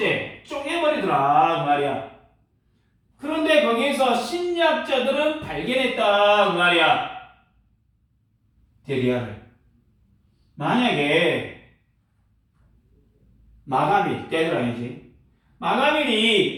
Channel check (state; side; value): identical; both; correlation 1.00